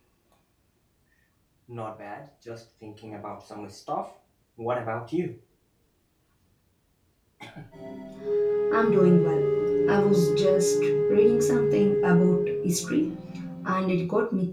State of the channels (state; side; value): identical; both; correlation 1.00